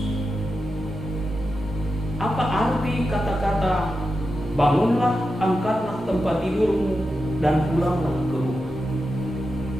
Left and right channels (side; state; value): both; normal; correlation 0.89